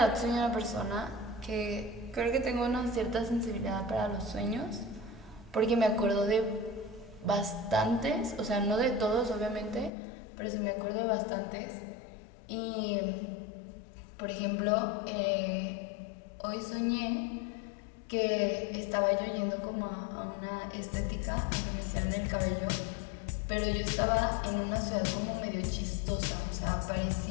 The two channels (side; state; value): right; drops out; at 9.9 s